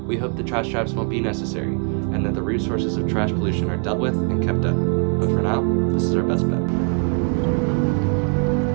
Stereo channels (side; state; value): left; quieter; 38.0 dB